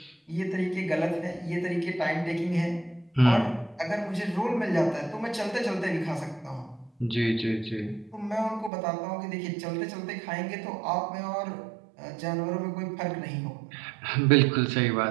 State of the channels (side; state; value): left; drops out; at 8.7 s